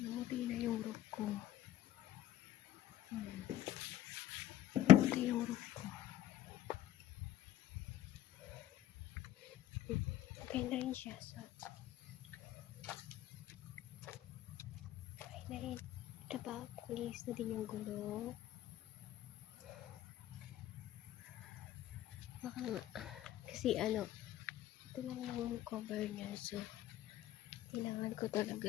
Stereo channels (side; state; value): right; quieter; 13.0 dB